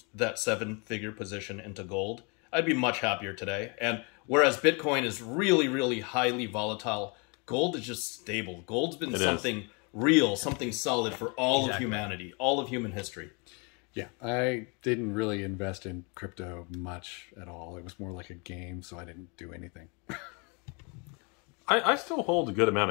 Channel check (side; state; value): right; quieter; 32.6 dB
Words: that 7-figure position into gold, I'd be much happier today. And whereas Bitcoin is really, really highly volatile, gold is just stable. Gold's been something real, something solid for all of humanity, all of human history. Yeah, I didn't really invest in crypto much at all. It was more like a game, so I didn't do anything. I still hold a good amount